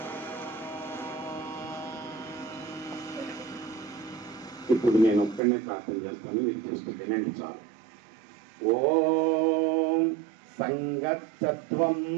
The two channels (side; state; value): left; drops out; at 5.4 s